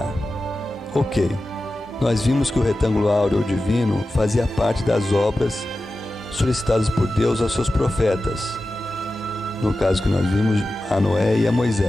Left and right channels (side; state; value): both; normal; correlation 0.94